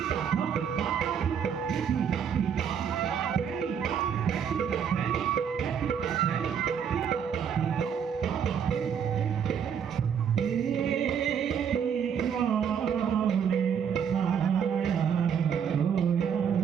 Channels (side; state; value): left; quieter; 7.7 dB